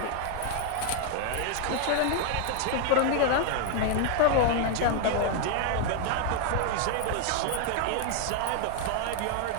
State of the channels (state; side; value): different; both; correlation 0.01